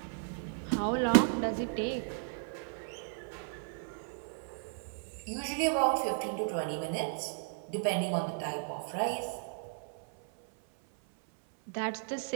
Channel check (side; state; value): left; silent; 55 dB below the other